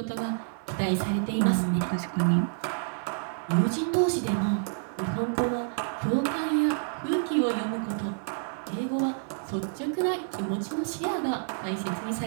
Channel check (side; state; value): left; silent; digital silence